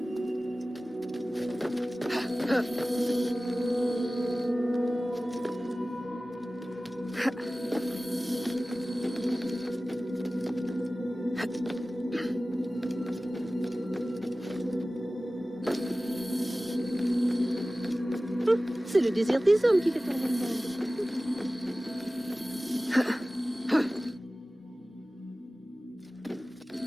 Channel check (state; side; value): normal; both; correlation 0.97